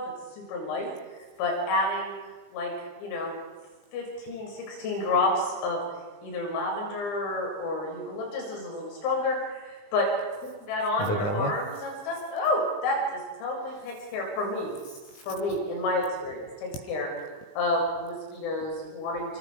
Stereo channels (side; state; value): right; late; 19 ms